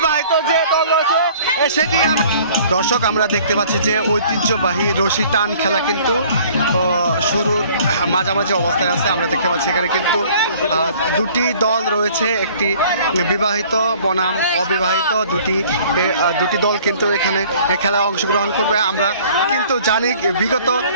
যে দল রয়েছে সেটি। দর্শক আমরা দেখতে পাচ্ছি যে ঐতিহ্যবাহী রশি টান খেলা কিন্তু শুরুর মাঝামাঝি অবস্থায় আছে। আমরা দেখতে পাচ্ছি এখানে কিন্তু দুটি দল রয়েছে, একটি বিবাহিত বনাম অবিবাহিত দুটি দল কিন্তু এখানে খেলায় অংশগ্রহণ করবে। আমরা কিন্তু জানি বিগত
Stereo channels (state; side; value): inverted; both; correlation -0.53